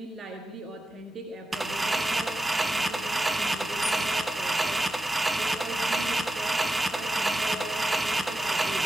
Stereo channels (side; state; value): both; normal; correlation 0.90